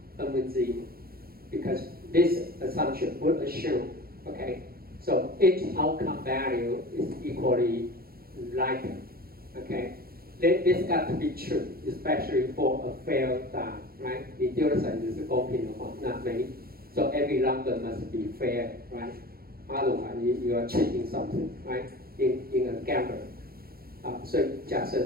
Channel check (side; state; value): left; late; 0.44 ms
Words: n with 0, because this assumption would assume, okay, so each outcome value is equally likely, okay? This got to be true, especially for a fair die, right? 你丢的骰子是公平的话，那so every number must be fair, right? Otherwise, you are cheating something, right? In a gamble. So 假设